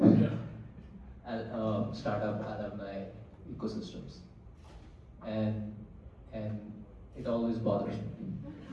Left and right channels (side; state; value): both; identical; correlation 1.00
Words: startup alumni ecosystems. And it always bothers me.